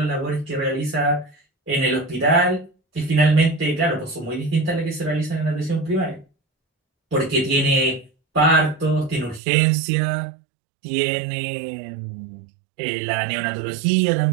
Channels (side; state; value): left; drops out; at 9.4 s